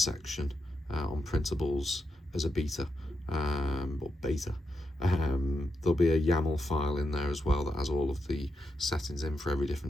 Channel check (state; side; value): normal; both; correlation 0.84